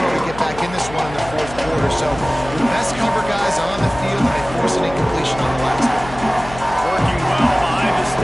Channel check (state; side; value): noise; left; hum, 14 dB below the sound